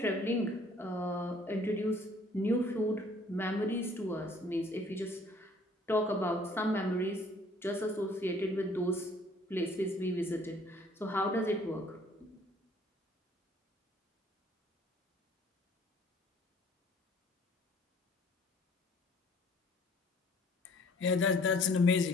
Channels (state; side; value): normal; both; correlation 0.57